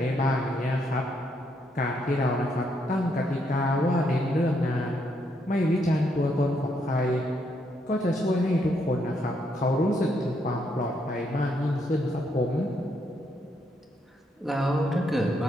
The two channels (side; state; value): both; normal; correlation 0.76